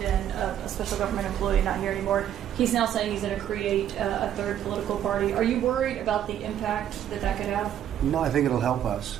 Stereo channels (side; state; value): left; quieter; 10.5 dB